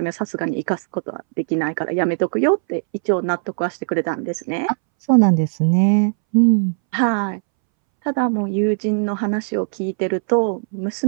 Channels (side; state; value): left; silent; 65 dB below the other